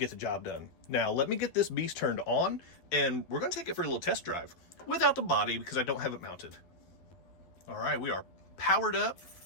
the job done. Now let me get this beast turned on and we're going to take it for a little test drive without the body because I don't have it mounted. All right, we are powered up.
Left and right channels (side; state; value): right; late; 12 ms